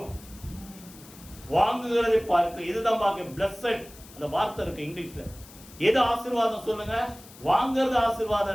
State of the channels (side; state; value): left; noise; hiss, 20 dB below the sound